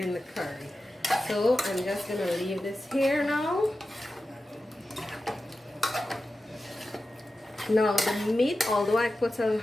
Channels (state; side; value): normal; both; correlation 0.93